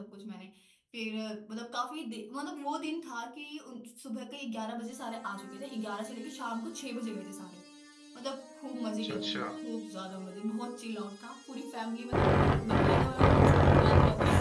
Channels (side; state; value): both; identical; correlation 1.00